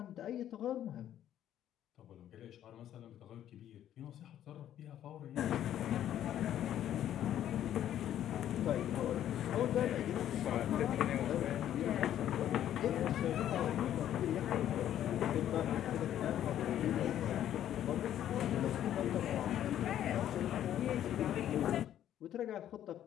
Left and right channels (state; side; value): quieter; right; 11.2 dB